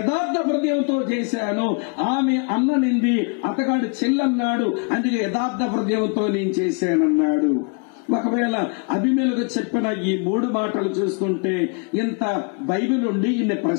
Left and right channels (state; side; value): quieter; right; 37.5 dB